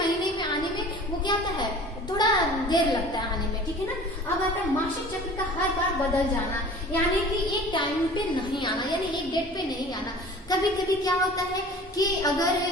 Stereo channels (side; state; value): both; normal; correlation 0.43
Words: में आने में वो क्या होता है, थोड़ा देर लगता है आने में, ठीक है ना। अब आता है मासिक चक्र का हर बार बदल जाना, यानी कि एक टाइम पे नहीं आना, यानी एक डेट पे नहीं आना। कभी कभी क्या होता है कि अगर